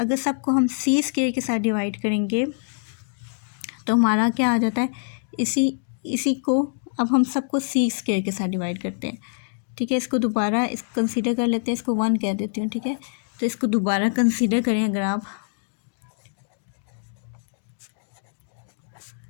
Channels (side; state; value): right; silent; digital silence